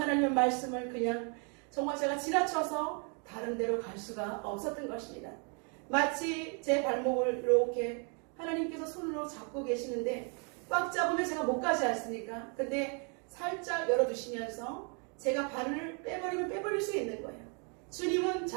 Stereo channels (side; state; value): left; quieter; 37.8 dB